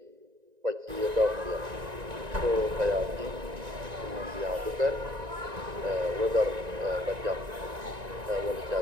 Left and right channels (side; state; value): left; late; 1.9 ms